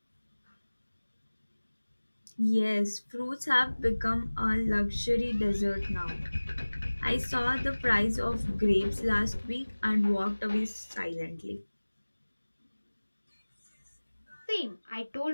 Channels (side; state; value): both; inverted; correlation -1.00